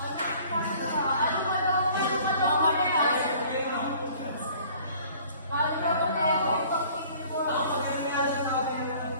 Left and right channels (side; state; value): both; inverted; correlation -0.52